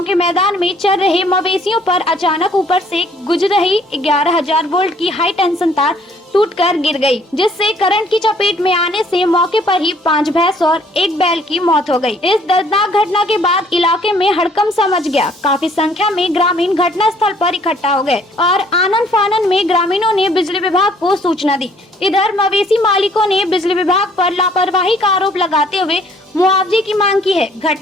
के मैदान में चल रहे मवेशियों पर अचानक ऊपर से गुजर रही 11,000 वोल्ट की हाई टेंशन तार टूटकर गिर गई, जिससे करंट की चपेट में आने से मौके पर ही 5 भैंस और 1 बैल की मौत हो गई। इस दर्दनाक घटना के बाद इलाके में हड़कंप मच गया। काफी संख्या में ग्रामीण घटना स्थल पर इकट्ठा हो गए और आनन फानन में ग्रामीणों ने बिजली विभाग को सूचना दी। इधर मवेशी मालिकों ने बिजली विभाग पर लापरवाही का आरोप लगाते हुए मुआवजे की मांग की है।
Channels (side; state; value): both; normal; correlation 0.60